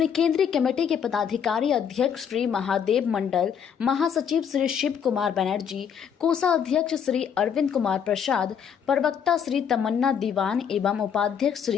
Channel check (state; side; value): quieter; right; 7.7 dB